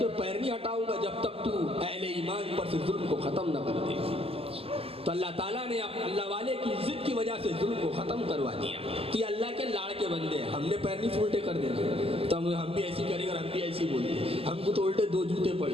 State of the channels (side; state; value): left; late; 0.28 ms